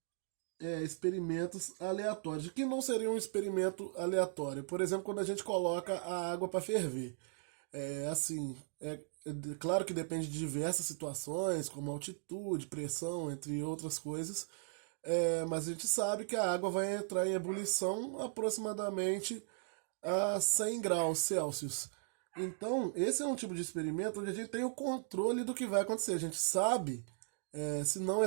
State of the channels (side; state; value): left; silent; digital silence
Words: experimentos aleatórios. O que não seria um experimento aleatório? Por exemplo, quando a gente coloca a água para ferver. Assim, claro que depende de diversas situações, como altitude, pressão, entre outras coisas. Mas a gente sabe que a água vai entrar em ebulição aproximadamente a 100 graus Celsius. Então, esse é um tipo de experimento onde a gente tem o controle do que vai acontecer. A gente sabe, se não